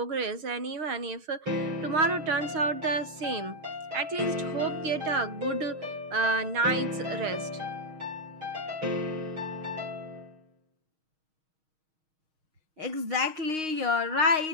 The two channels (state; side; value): late; left; 6.4 ms